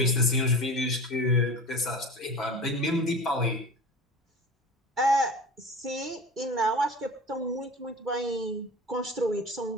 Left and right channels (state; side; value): normal; both; correlation 0.34